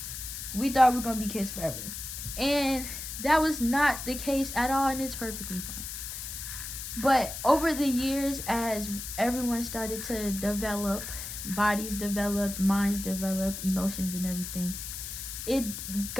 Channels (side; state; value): left; noise; hiss, 7 dB below the sound